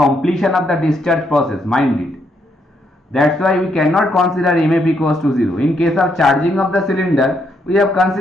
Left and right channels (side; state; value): both; normal; correlation 0.75